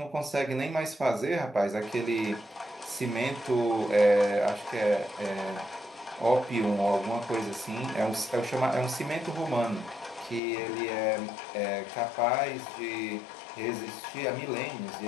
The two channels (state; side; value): drops out; right; at 10.4 s